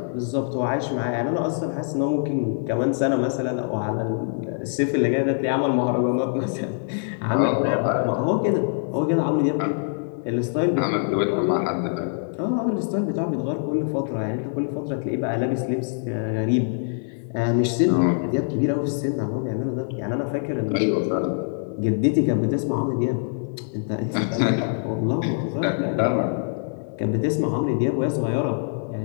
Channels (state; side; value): silent; right; digital silence